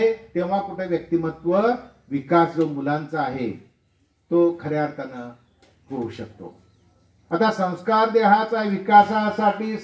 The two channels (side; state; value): both; identical; correlation 1.00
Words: तेव्हा कुठे व्यक्तिमत्व विकास जो मुलांचा आहे तो खऱ्या अर्थानं होऊ शकतो. आता संस्कार देहाचा विकासासाठी